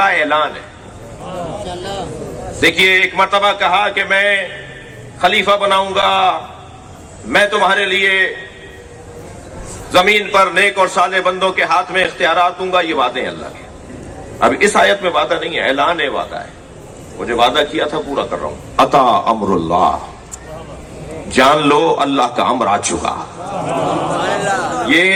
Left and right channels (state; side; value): identical; both; correlation 1.00